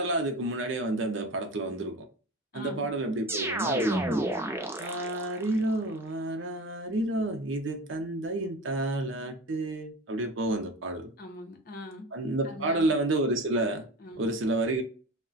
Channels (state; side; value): normal; both; correlation 0.32